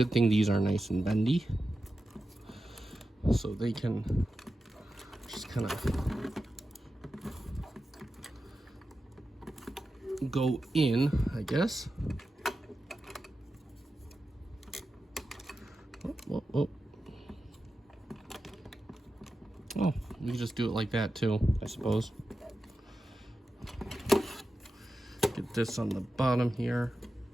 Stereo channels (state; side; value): normal; both; correlation 0.91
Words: thing these are nice and bendy, so they can just kind of go in, I guess. Oh, you just do it like that too, I suppose. Get this on the bottom here.